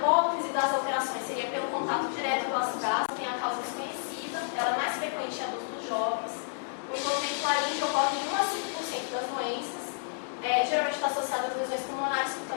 das alterações seria pelo contato direto com o ácido gástrico, tem a causa desconhecida, ela é mais frequente em adultos jovens. O envolvimento laríngeo ocorre em 1 a 5% das doenças, geralmente está associado às lesões pulmonares,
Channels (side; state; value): right; silent; digital silence